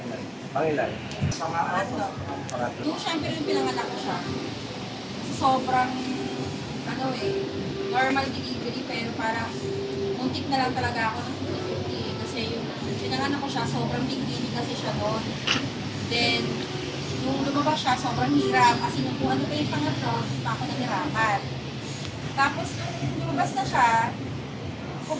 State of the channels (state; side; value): identical; both; correlation 1.00